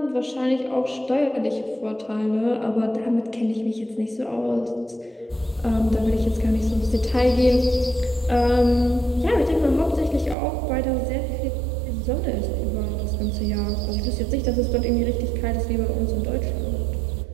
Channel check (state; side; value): drops out; left; at 10.4 s